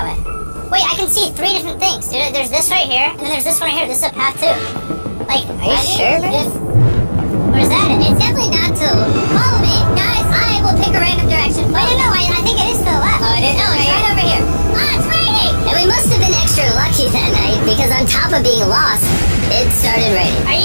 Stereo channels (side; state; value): both; inverted; correlation -1.00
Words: way? Wait, I can see 3 different things, dude. There's this right here, and then there's this one right here. This is a path too. Like, are you sure, man? Where's that? It's definitely not to follow me. Guys, I will pick a random direction. Wait, no, I think it is to the left. Oh, it is? No, it's right over here. Ah, it's raining! And we must have been extra lucky that night because on top of being lost, it started raining. Are